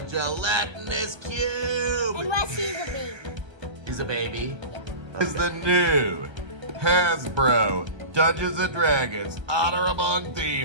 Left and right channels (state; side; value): late; left; 1.3 ms